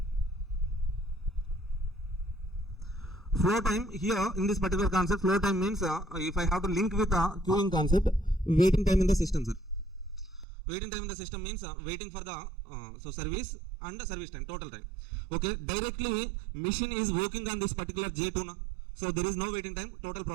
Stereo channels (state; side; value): drops out; left; at 10.5 s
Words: Flow time here in this particular concept, flow time means if I have to link with queuing concept, waiting time in the system, sir. Waiting time in the system means waiting for the service and the service time, total time. Okay, directly machine is working on this particular J2 now. So there is no waiting time, total